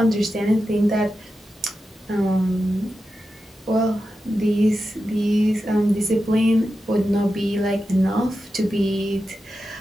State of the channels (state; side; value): normal; both; correlation 0.90